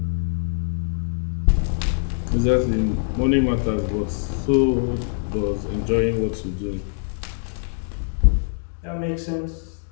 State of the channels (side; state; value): right; silent; digital silence